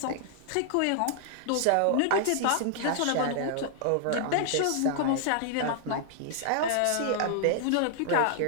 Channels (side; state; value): both; different; correlation 0.00